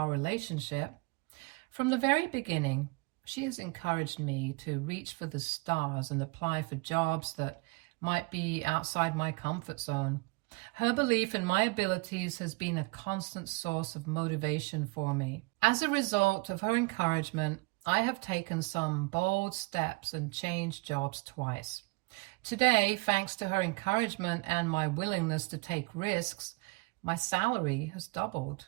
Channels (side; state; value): left; quieter; 27.4 dB